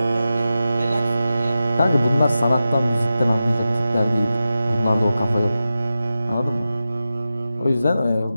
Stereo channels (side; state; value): both; inverted; correlation -0.92